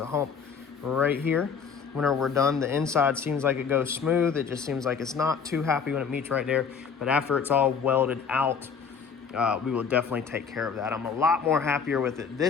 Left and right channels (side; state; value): right; quieter; 6.2 dB